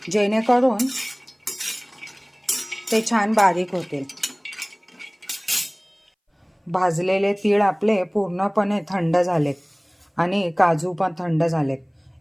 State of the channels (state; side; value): identical; both; correlation 1.00